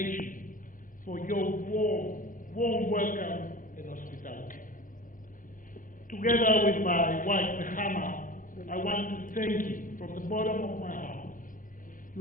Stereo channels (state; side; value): late; right; 0.39 ms